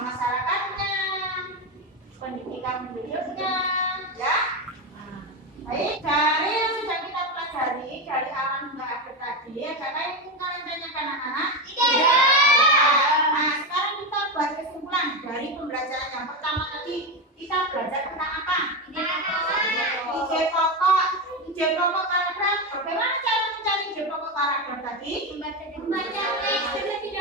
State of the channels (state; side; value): normal; both; correlation 0.14